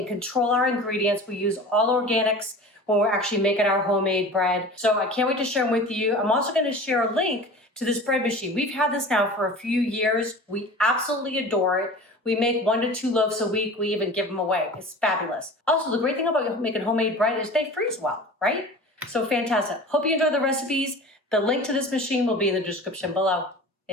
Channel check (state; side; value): normal; both; correlation 0.38